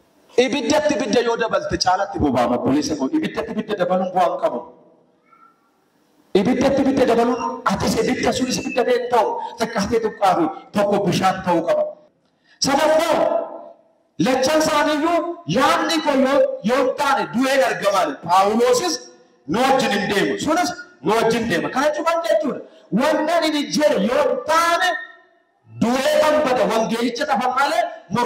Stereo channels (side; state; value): both; identical; correlation 1.00